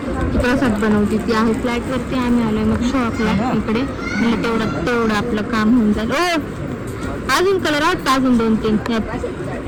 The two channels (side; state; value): both; identical; correlation 1.00